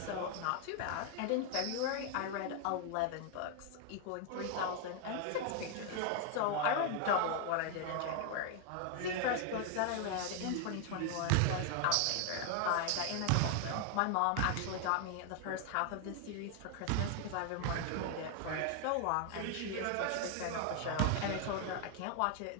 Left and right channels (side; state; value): both; different; correlation 0.00